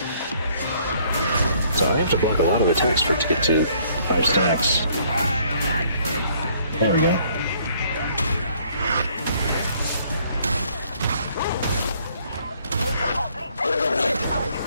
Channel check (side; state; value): both; inverted; correlation -0.63